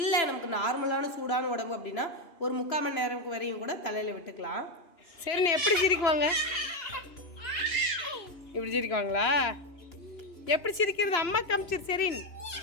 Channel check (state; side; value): late; right; 2.9 ms